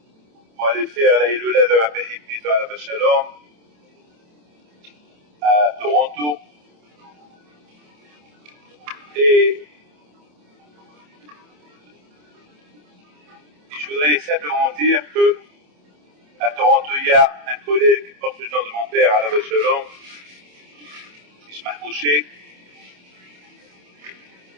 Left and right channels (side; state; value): left; late; 27 ms